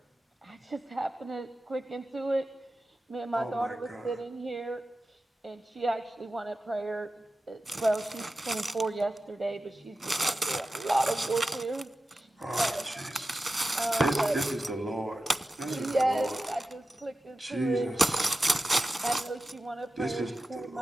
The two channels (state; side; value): normal; both; correlation 0.93